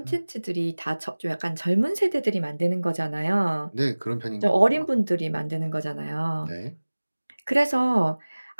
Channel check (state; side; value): inverted; both; correlation -1.00